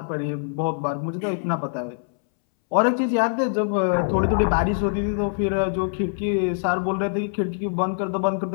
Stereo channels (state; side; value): silent; right; 63 dB below the other